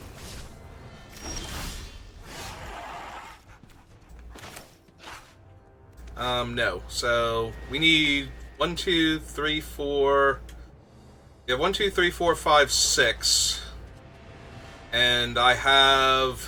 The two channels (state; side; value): identical; both; correlation 1.00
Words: No. So, we need 1, 2, 3, 4... Yeah, 1, 2, 3, 4, 5, 6... And I